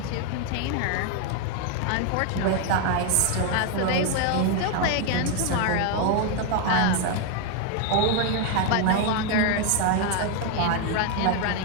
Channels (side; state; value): both; different; correlation 0.01